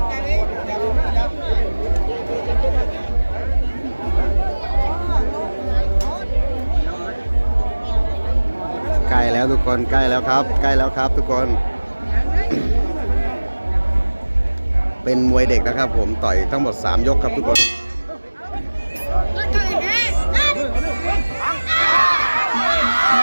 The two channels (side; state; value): both; inverted; correlation -1.00